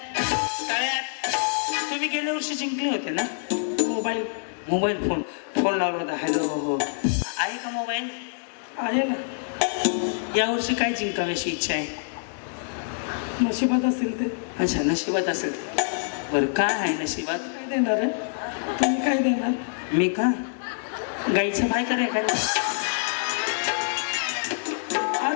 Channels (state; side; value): silent; right; digital silence